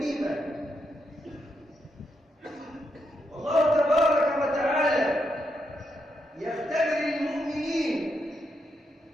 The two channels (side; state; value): both; normal; correlation 0.81